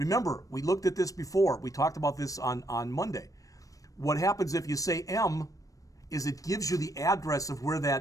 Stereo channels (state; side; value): late; right; 0.16 ms